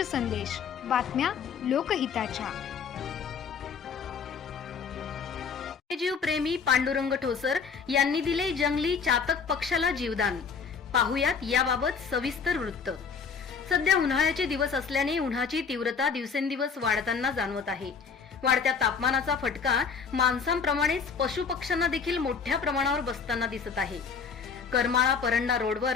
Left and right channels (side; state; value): right; quieter; 5.9 dB